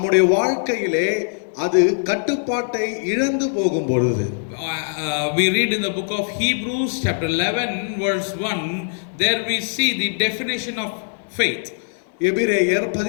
வாழ்க்கையிலே அது கட்டுப்பாட்டை இழந்து போகும் பொழுது. We read in the book of Hebrews chapter 11 verse 1, there we see the definition of faith. எபிரேயர்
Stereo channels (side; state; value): right; silent; digital silence